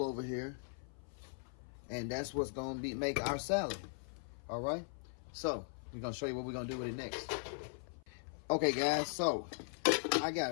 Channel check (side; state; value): right; silent; 52 dB below the other